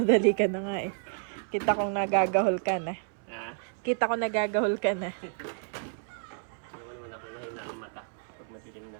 ka na nga eh. Kita kong nagagahol ka na. Ha? Kita ko nagagahol ka na. Hindi naman ako mahina ang mata pag madilim na.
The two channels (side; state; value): left; silent; 58 dB below the other